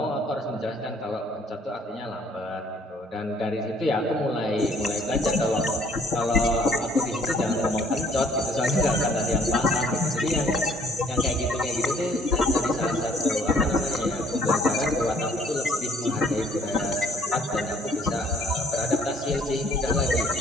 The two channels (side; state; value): both; normal; correlation 0.60